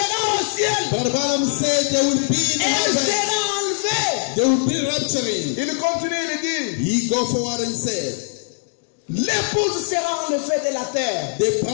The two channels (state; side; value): silent; right; digital silence